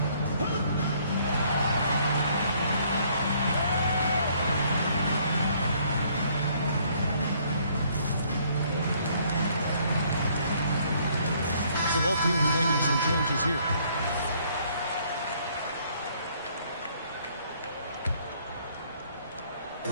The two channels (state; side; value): inverted; both; correlation -0.64